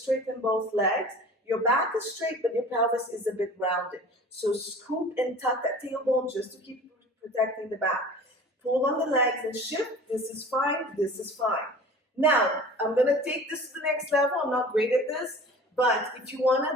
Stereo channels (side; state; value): both; normal; correlation 0.42